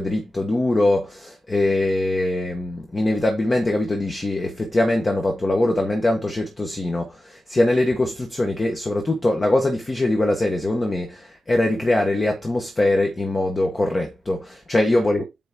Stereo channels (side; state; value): both; normal; correlation 0.94